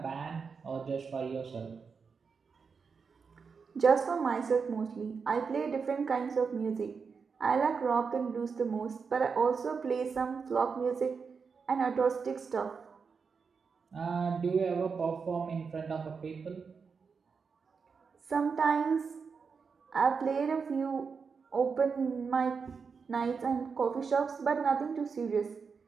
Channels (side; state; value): left; quieter; 5.5 dB